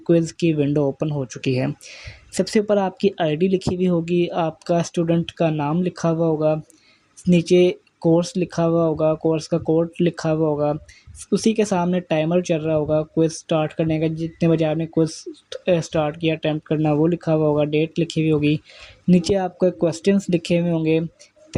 की विंडो ओपन हो चुकी है। सबसे ऊपर आपकी आईडी लिखी हुई होगी, आपका स्टूडेंट का नाम लिखा हुआ होगा, नीचे कोर्स लिखा हुआ होगा, कोर्स का कोड लिखा हुआ होगा, उसी के सामने टाइमर चल रहा होगा क्विज़ स्टार्ट करने का, जितने बजे आपने क्विज़ स्टार्ट किया अटेम्प्ट करना वो लिखा हुआ होगा, डेट लिखी हुई होगी। नीचे आपके क्वेश्चंस लिखे हुए होंगे,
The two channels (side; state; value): both; identical; correlation 1.00